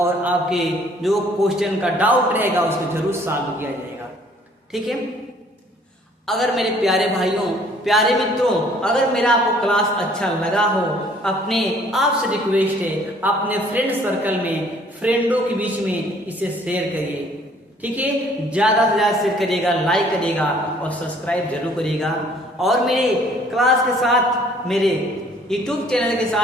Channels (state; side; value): normal; both; correlation 0.58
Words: आपके जो क्वेश्चन का डाउट रहेगा उसको जरूर सॉल्व किया जाएगा, ठीक है। अगर मेरे प्यारे भाइयों, प्यारे मित्रों, अगर मेरा आपको क्लास अच्छा लगा हो, अपने आपसे रिक्वेस्ट है, अपने फ्रेंड सर्कल में, फ्रेंडों के बीच में इसे शेयर करिए, ठीक है। ज्यादा से ज्यादा शेयर करिएगा, लाइक करिएगा और सब्सक्राइब जरूर करिएगा। और मेरे क्लास के साथ, मेरे यूट्यूब चैनल के